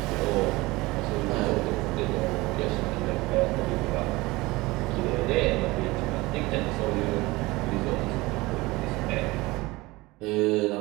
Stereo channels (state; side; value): quieter; left; 21.5 dB